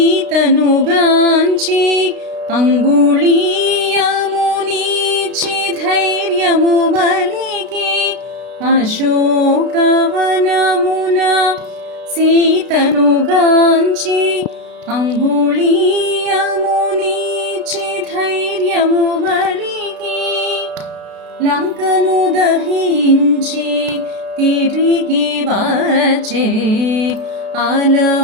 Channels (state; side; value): late; left; 33 ms